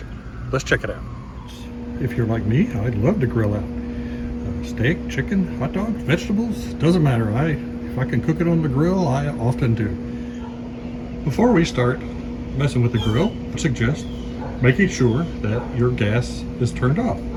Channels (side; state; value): both; identical; correlation 1.00